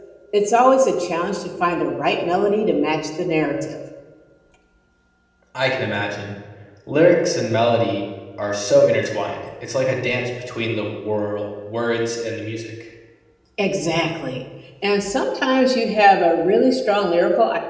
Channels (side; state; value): both; identical; correlation 1.00